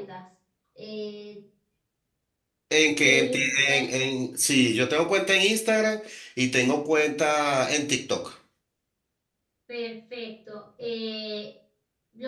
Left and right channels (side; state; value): both; identical; correlation 1.00